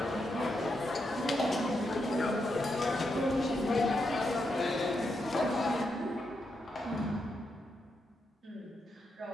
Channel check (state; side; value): normal; both; correlation 0.83